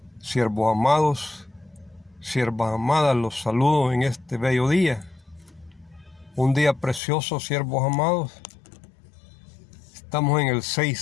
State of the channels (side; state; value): right; drops out; at 7.0 s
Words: Siervos amados, siervas amadas, los saludo en este bello día. Un día precioso, siervos amados. Estamos en el